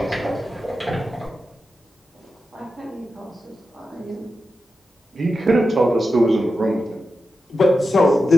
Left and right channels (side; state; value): both; normal; correlation 0.90